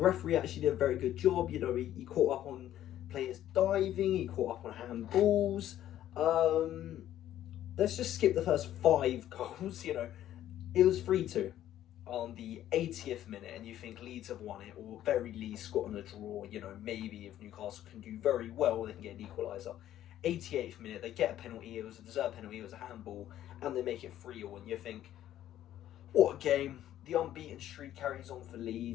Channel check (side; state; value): right; quieter; 12.3 dB